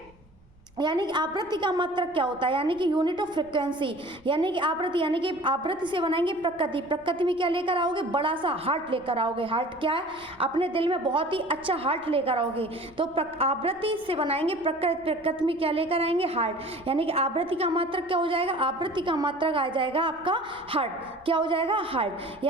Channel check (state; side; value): noise; right; rumble, 28 dB below the sound